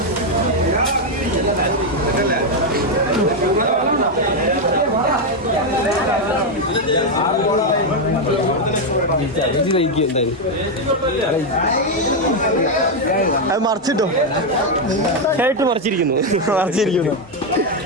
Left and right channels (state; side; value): normal; both; correlation 0.04